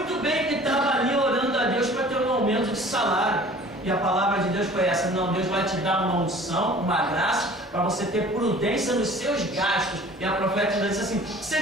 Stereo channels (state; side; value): normal; both; correlation 0.47